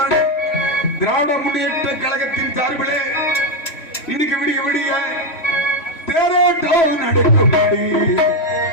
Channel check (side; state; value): right; late; 3.5 ms